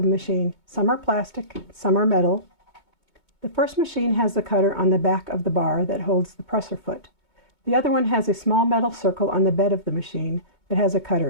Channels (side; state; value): right; late; 2.2 ms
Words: the machine. Some are plastic, some are metal. The first machine has the cutter on the back of the bar that holds the presser foot. The other one has a small metal circle on the bed of the machine that has a cutter